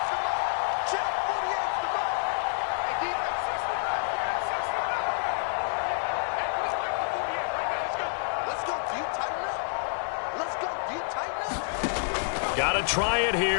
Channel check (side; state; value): right; silent; digital silence